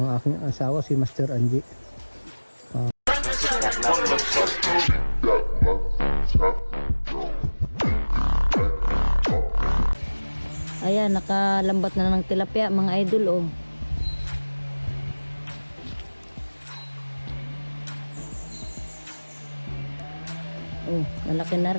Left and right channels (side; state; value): both; inverted; correlation -1.00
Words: aking asawa si Master Angie. Ayan, nakalambat na ng tilapia mga idol, oh. Oh, malaki na